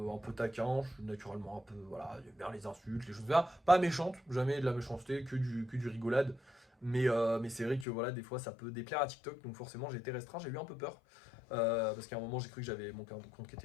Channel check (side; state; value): right; drops out; at 7.9 s